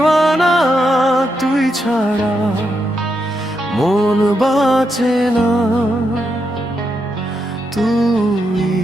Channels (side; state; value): both; normal; correlation 0.83